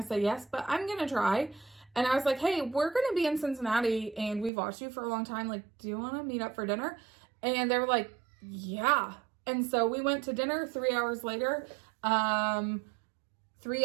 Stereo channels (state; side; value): drops out; left; at 4.5 s